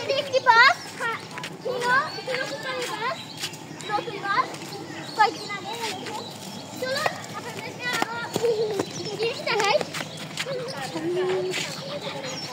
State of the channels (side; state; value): both; identical; correlation 1.00